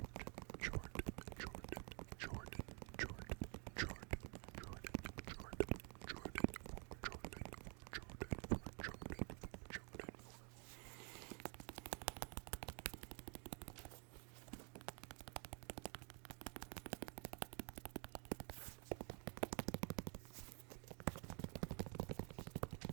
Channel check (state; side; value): quieter; left; 37.2 dB